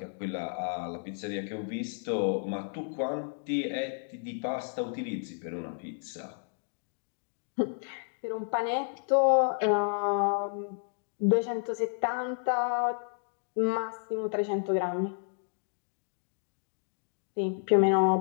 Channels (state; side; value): silent; right; digital silence